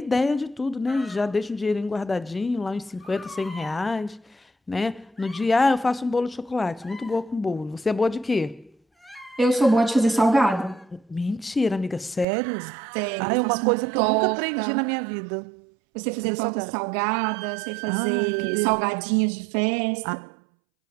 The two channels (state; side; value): drops out; left; at 12.2 s